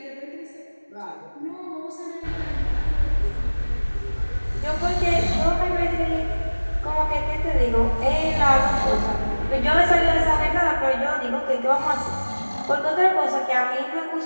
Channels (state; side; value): inverted; both; correlation -1.00